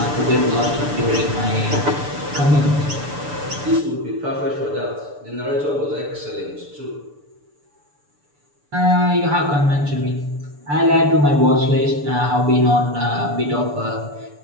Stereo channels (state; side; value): late; left; 6.9 ms